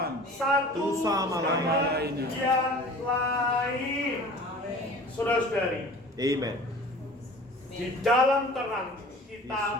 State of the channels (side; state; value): both; normal; correlation 0.43